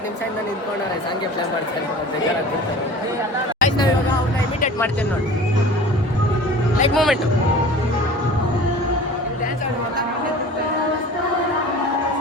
ನಿಮಿಷದಿಂದ ನಿಂತ್ಕೊಂಡವ್ರೆ ಸಾಂಗ್ಗೆ ಪ್ಲೇ ಮಾಡ್ತಾರೆ. ಬೇಜಾರಾಗ್ಬಿಡ್ತಾರೆ ಗೈಸ್. ನಾವು ಇವಾಗ ಅವ್ರನ್ನ ಇಮಿಟೇಟ್ ಮಾಡ್ತೇವೆ ನೋಡಿ. ಲೈಕ್ ಮೂಮೆಂಟು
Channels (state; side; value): normal; both; correlation 0.41